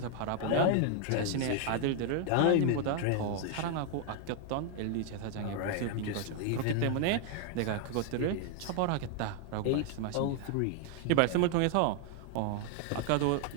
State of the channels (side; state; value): both; different; correlation 0.00